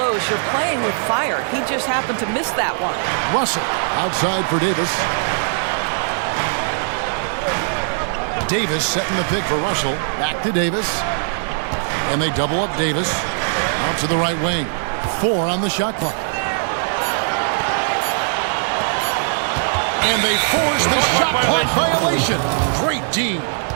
you're playing with fire. He just happened to miss that one. Russell outside for Davis. Davis setting the pick for Russell. Back to Davis. And they double up Davis. Out to the right wing. 4 on the shot clock. And they force the shot clock violation. Great D.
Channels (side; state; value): left; silent; digital silence